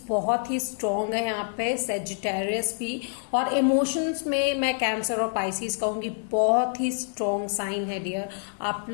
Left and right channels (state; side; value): silent; right; 56 dB below the other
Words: बहुत ही स्ट्रॉन्ग है यहाँ पे, सेजिटेरियस भी, और इमोशंस में मैं कैंसर और पाइसिस कहूंगी, बहुत ही स्ट्रॉन्ग साइन है डियर। आप